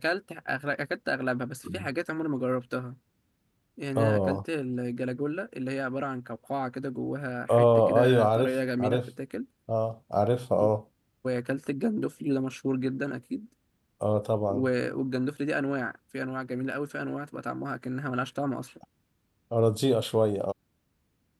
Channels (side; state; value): both; identical; correlation 1.00